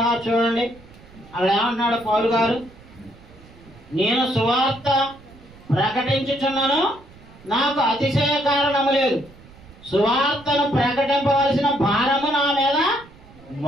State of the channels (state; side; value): noise; right; rumble, 23 dB below the sound